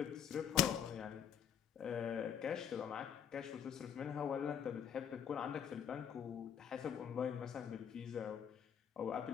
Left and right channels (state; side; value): quieter; right; 8.4 dB